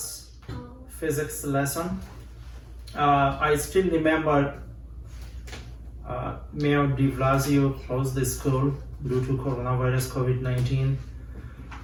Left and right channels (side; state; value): both; identical; correlation 1.00